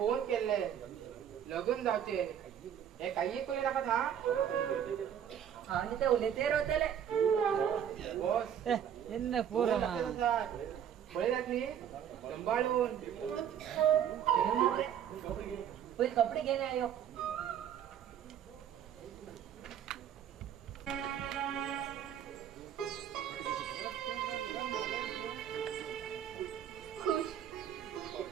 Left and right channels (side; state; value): left; quieter; 9.2 dB